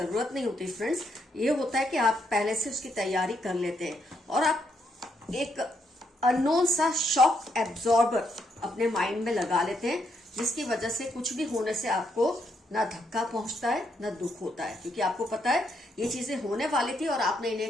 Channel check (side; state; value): both; normal; correlation 0.76